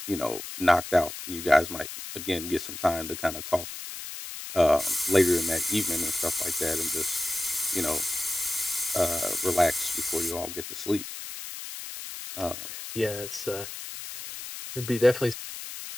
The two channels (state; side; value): noise; left; hiss, 9 dB below the sound